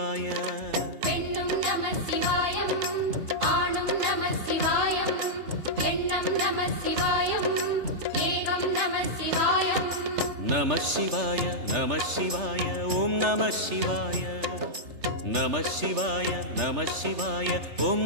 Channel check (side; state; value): left; late; 3.3 ms